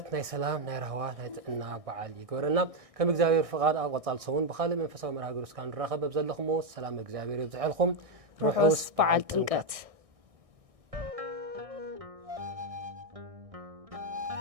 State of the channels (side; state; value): left; late; 1.6 ms